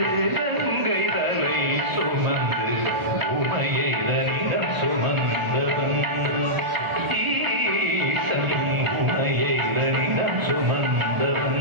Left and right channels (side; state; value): left; late; 1.4 ms